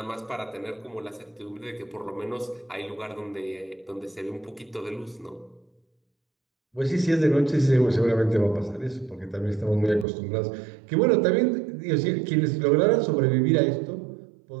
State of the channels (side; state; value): left; drops out; at 10.1 s